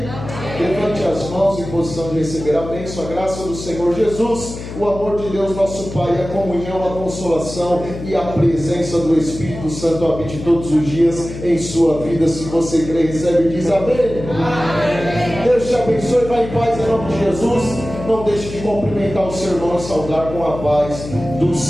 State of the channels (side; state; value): left; noise; hum, 10 dB below the sound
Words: Levante as mãos em posição de receber a bênção, a graça do Senhor Jesus, o amor de Deus nosso Pai, a comunhão, a consolação e a presença do Espírito Santo habite todos os dias em sua vida. Se você crê, recebe e diz amém. Amém. Deus te abençoe, vai em paz em nome de Jesus. não deixe de cumprimentar o seu irmão e saudar com a paz do